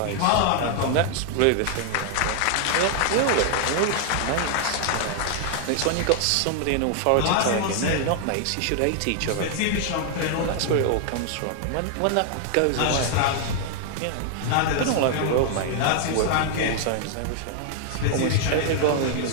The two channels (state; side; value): different; both; correlation 0.00